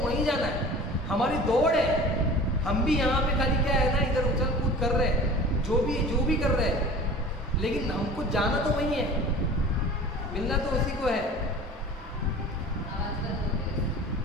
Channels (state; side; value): normal; both; correlation 0.41